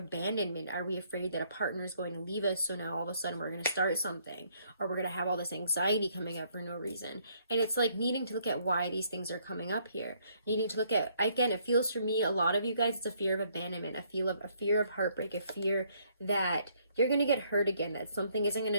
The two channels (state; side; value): inverted; both; correlation -0.68